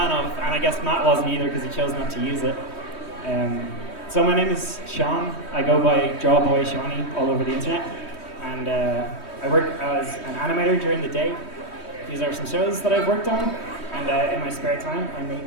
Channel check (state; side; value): late; right; 3.2 ms